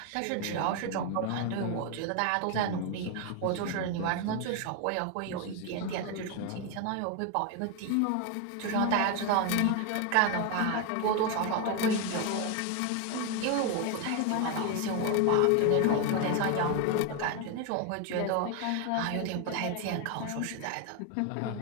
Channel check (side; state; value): both; different; correlation 0.01